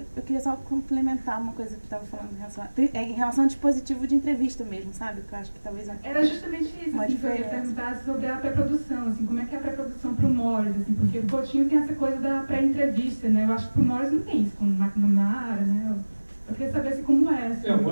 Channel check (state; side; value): inverted; both; correlation -1.00